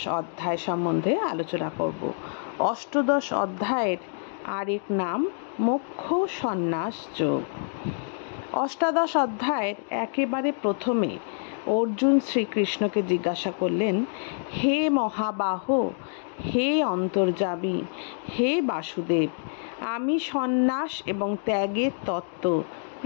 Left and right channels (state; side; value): silent; right; digital silence